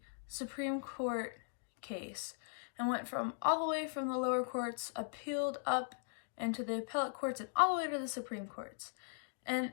Supreme Court case and went from all the way from the lower courts, appealed up into the appellate courts, and all the way to the Supreme Courts. And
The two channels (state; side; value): silent; right; digital silence